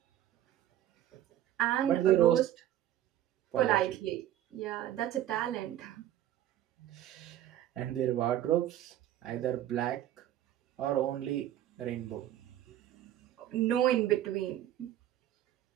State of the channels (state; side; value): quieter; left; 12.4 dB